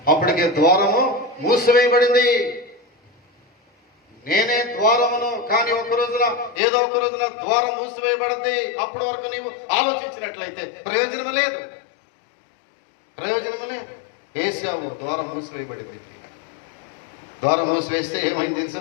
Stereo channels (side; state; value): right; drops out; at 6.6 s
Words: ద్వారము మూసివేయబడింది. నేనే ద్వారమును. కానీ ఏదో ఒక రోజున ద్వారం మూసివేయబడింది. అప్పటి వరకు నీవు ఆలోచించినట్లయితే ప్రయోజనం లేదు. ఏశావు ద్వారం మూసివేయబడింది. ద్వారం మూసివేస్తే ఏమైంది